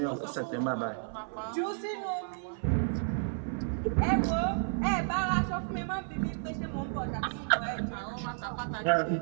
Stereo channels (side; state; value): left; silent; 56 dB below the other